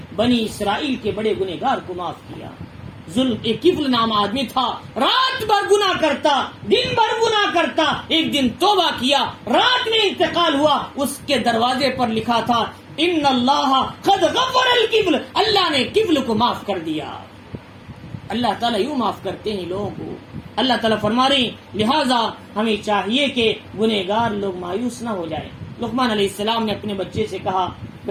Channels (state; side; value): identical; both; correlation 1.00